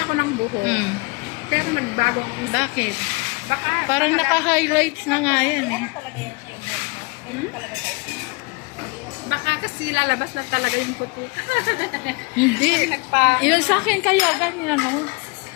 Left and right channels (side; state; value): right; quieter; 28.4 dB